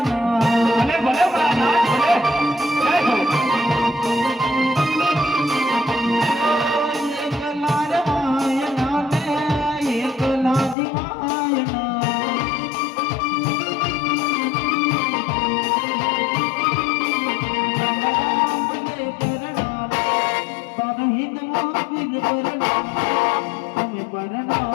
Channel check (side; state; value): right; drops out; at 10.8 s